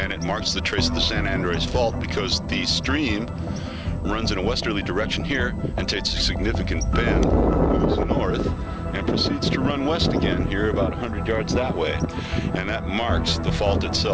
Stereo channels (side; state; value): both; identical; correlation 1.00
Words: it marks the trace of the San Andreas Fault because the stream runs in a westerly direction here and takes a significant bend, moves north, and proceeds to run west again here about 100 yards that way. And that marks the fault